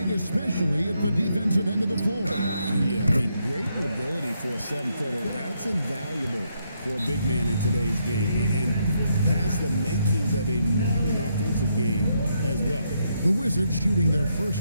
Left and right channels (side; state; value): both; inverted; correlation -0.77